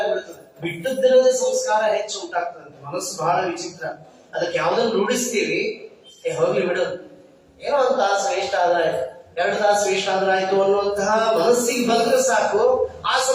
ಬಿಟ್ಟದ್ದಿರೋದೇ ಸಂಸ್ಕಾರ ಹೆಚ್ಚು ಉಂಟಾಗ್ತದೆ. ಮನಸ್ಸು ಬಹಳ ವಿಚಿತ್ರ. ಅದಕ್ಕೆ ಯಾವ್ದನ್ನು ರೂಢಿಸ್ತೀವಿ, ಹೋಗ್ಲಿ ಬಿಡು, ಏನೋ ಒಂದು ತಾಸು ವೇಸ್ಟ್ ಆದ್ರೆ 2 ತಾಸು ವೇಸ್ಟ್ ಆದ್ರೆ ಆಯ್ತು ಅನ್ನುವಂತಹ ಮನಸ್ಸಿಗೆ ಬಂದ್ರೆ ಸಾಕು, ಆ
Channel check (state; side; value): identical; both; correlation 1.00